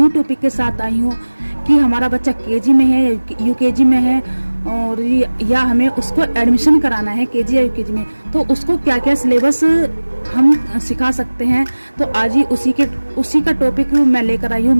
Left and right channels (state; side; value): inverted; both; correlation -1.00